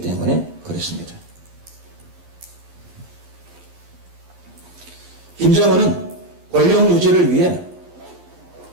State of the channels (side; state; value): left; late; 11 ms